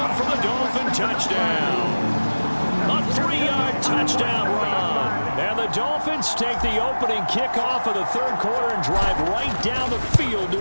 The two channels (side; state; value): both; inverted; correlation -1.00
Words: for the Dolphin touchdown. A 3-yard touchdown run. And the Dolphins take the opening kickoff of the 3rd quarter and drive right down the field